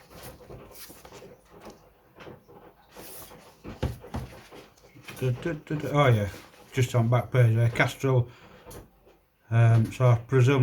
Oh yeah, just on back page there, Castrol. So I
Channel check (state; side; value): identical; both; correlation 1.00